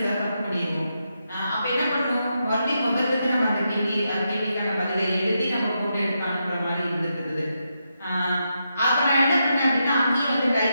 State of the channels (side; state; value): both; inverted; correlation -0.84